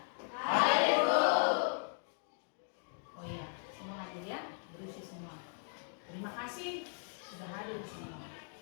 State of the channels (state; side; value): silent; right; 53 dB below the other